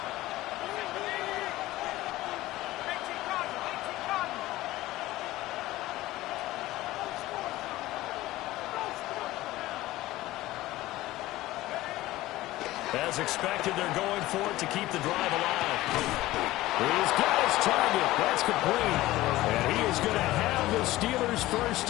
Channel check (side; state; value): right; quieter; 17.1 dB